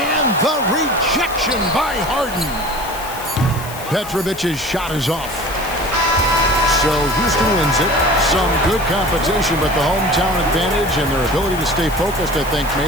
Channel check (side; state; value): left; noise; hiss, 14 dB below the sound